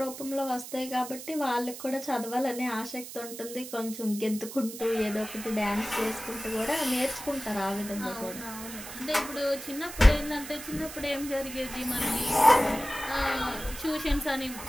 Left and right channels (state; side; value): noise; right; hiss, 11 dB below the sound